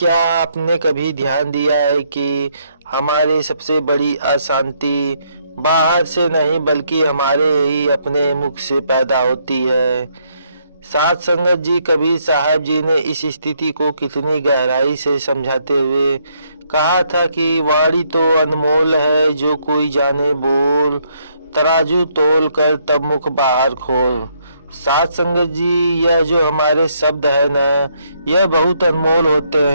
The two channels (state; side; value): inverted; both; correlation -0.72